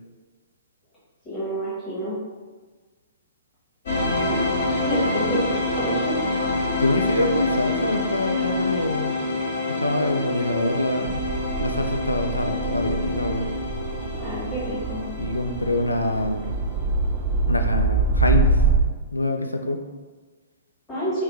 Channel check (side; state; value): both; inverted; correlation -0.46